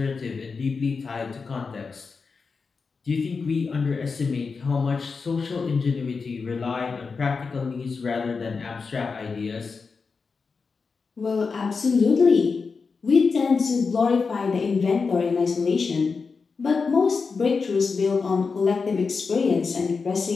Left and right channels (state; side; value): quieter; right; 4.9 dB